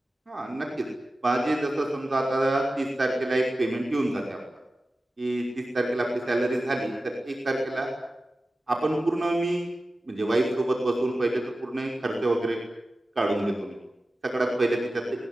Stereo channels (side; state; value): both; normal; correlation 0.94